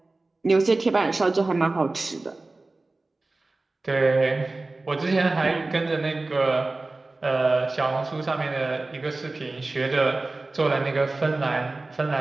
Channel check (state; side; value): quieter; left; 3.2 dB